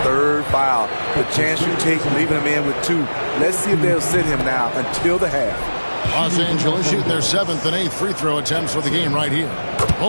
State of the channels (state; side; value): inverted; both; correlation -1.00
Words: 3rd foul. The chance you take leaving him in with 2. Let's see if they'll sit him now until the half. Los Angeles shooting their 7th and 8th free throw attempts for the game right here.